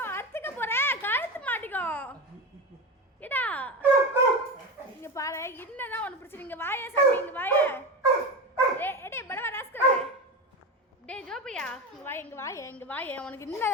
அறுத்துக்க போற, கழுத்து மாட்டிக்கோ. ஏடா இங்க பாரு, என்னதான் உனக்கு பிரச்சனை? இங்க வாயே சாமி, இங்க வாயே. டேய் படவா ராஸ்கல். டேய் ஜோபியா, இங்க வாயே உனக்கு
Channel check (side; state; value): both; normal; correlation 0.21